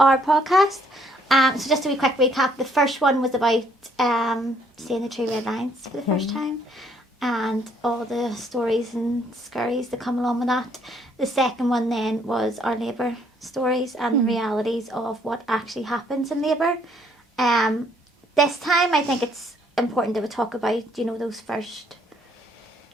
podcast. So just a wee quick recap. The first one was about seeing the 3 red lines for the first time and all the stories and scurries that come along with that. The second one then was our labour stories and the realities of what actually happens in labour. This time I think it's important that we talk about, you know, those first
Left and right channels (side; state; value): both; normal; correlation 0.66